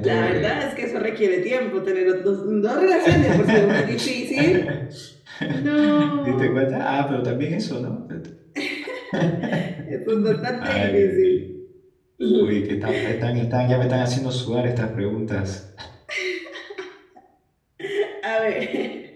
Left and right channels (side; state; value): both; identical; correlation 1.00